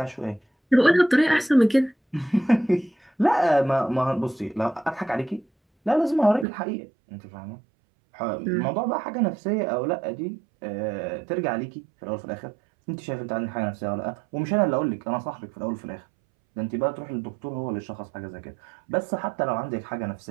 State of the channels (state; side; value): drops out; left; at 6.5 s